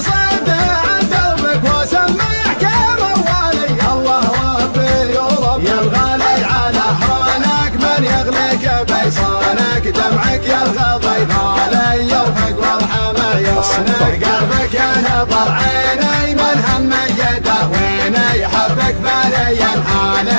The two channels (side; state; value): both; inverted; correlation -1.00